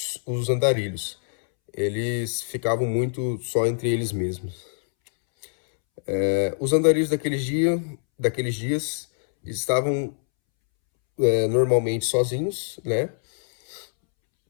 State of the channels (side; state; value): right; silent; 62 dB below the other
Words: andarilhos. Eles ficavam muito só entre eles mesmos. Os andarilhos daqueles dias estavam normalmente sozinhos, né?